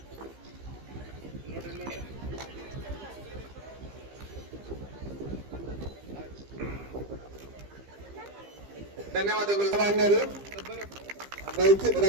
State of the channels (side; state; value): left; late; 15 ms